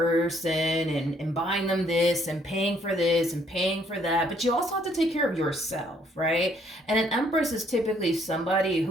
and buying them this and paying for this and paying for that, but you also have to take care of yourself, right? And an Empress is typically somebody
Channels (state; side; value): normal; both; correlation 0.66